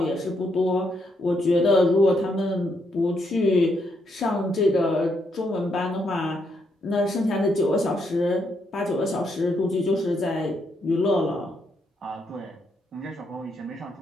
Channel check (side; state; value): both; normal; correlation 0.77